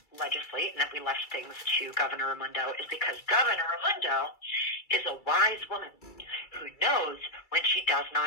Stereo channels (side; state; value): right; late; 2.3 ms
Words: legislate and that we left things to Governor Raimondo is because Governor Raimondo is a wise woman who knows when she does